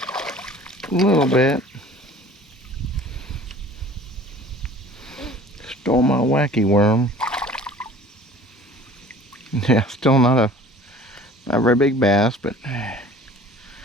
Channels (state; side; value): normal; both; correlation 0.47